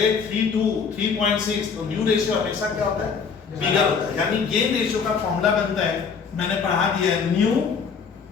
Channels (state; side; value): quieter; right; 5.9 dB